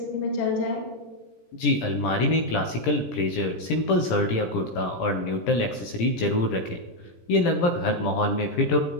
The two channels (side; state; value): right; late; 17 ms